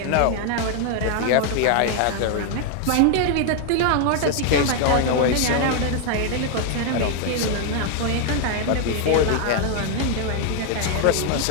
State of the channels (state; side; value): different; both; correlation 0.00